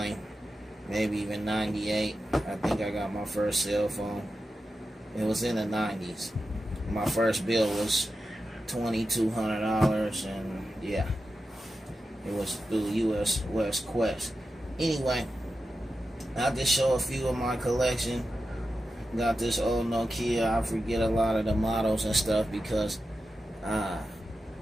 maybe even 98. I think I got my first cell phone. It was in the 90s. My first bill was $2,200, and yeah, it was through US West Quest. Anyway, I'll just show a few of my collection. Got this old Nokia. I forget a lot of the models and stuff because I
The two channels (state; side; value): normal; both; correlation 0.91